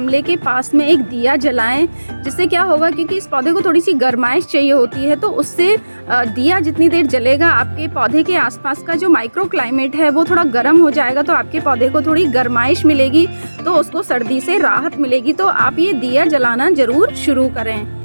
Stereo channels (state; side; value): inverted; both; correlation -1.00